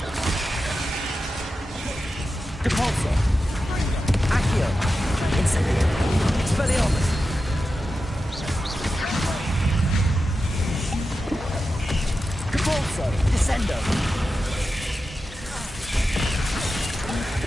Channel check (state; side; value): normal; both; correlation 0.91